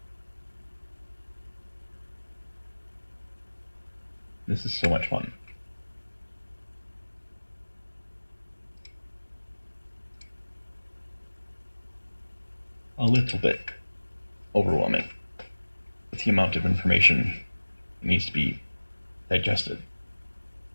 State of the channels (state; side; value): inverted; both; correlation -1.00